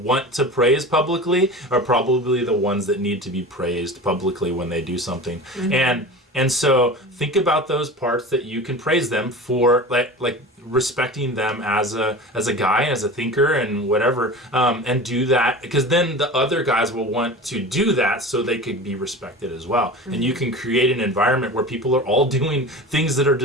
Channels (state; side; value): normal; both; correlation 0.33